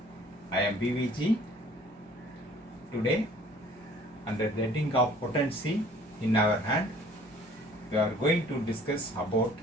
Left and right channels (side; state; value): both; normal; correlation 0.54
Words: I am BVG. Today, under the heading of potency in our hand, we are going to discuss about